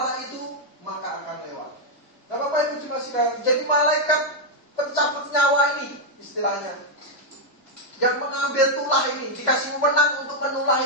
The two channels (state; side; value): late; right; 2.1 ms